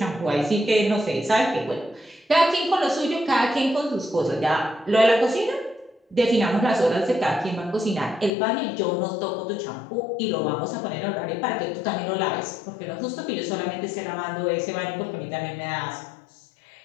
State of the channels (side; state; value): right; drops out; at 8.3 s